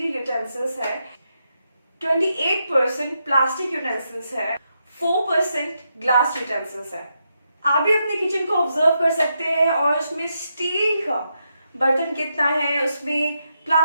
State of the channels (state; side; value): inverted; both; correlation -0.83